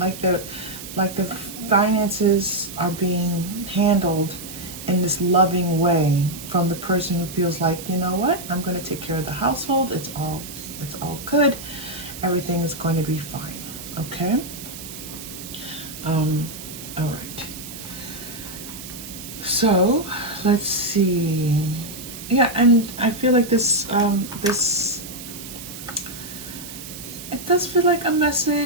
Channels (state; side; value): noise; right; hiss, 12 dB below the sound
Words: the finances are being handled in this loving way from the person who feels like, you know what, I'm going to take care of the household. It's all good. Everything is going to be fine. Okay. All right. So let's see. Yeah, and I feel like this it does feel like a